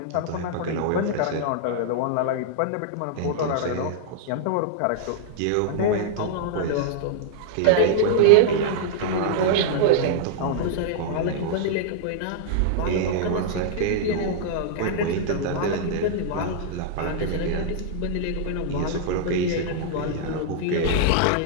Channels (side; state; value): both; different; correlation -0.01